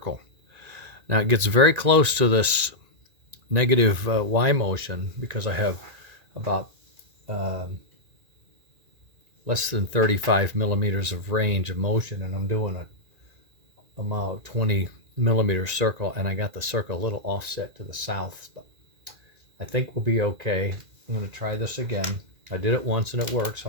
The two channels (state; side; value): late; left; 2.4 ms